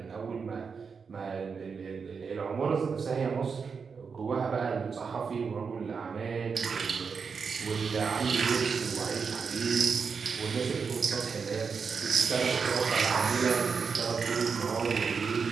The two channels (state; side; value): quieter; left; 5.6 dB